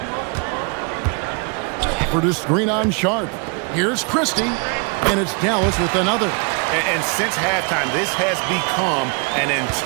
For the screen on Sharp. Here's Christie. And it's Dallas with another. And since halftime, this has become an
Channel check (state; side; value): quieter; left; 34.9 dB